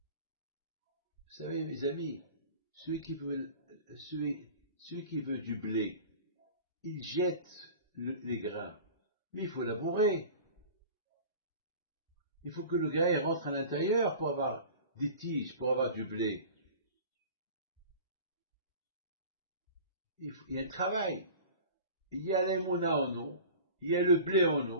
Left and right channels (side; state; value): both; inverted; correlation -0.39